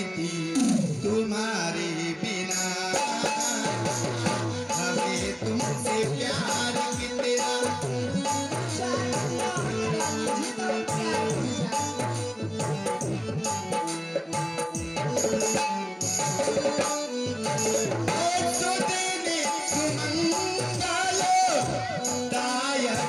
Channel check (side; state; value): both; identical; correlation 1.00